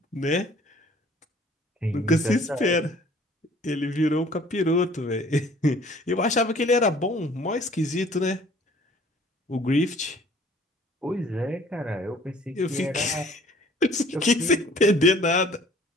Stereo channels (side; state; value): both; normal; correlation 0.54